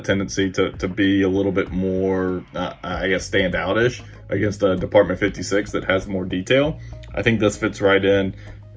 tendency to be a little bit more, I guess, standout-ish against a Department 56 that has more detail. I think this fits right in,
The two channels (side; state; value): both; identical; correlation 1.00